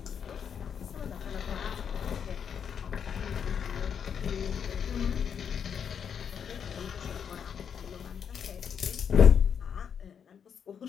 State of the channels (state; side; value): quieter; right; 7.5 dB